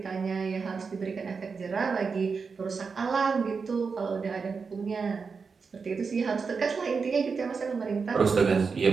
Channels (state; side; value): quieter; left; 5.2 dB